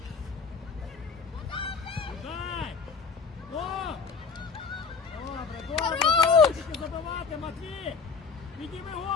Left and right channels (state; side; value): quieter; right; 5.3 dB